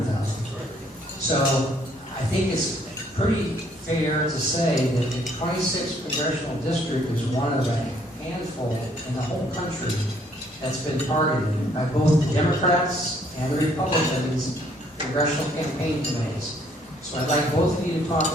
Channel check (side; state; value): both; normal; correlation 0.65